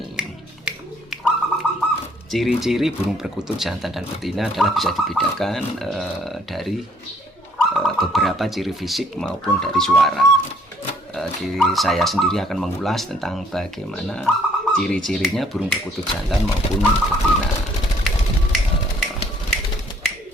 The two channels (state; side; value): normal; both; correlation 0.63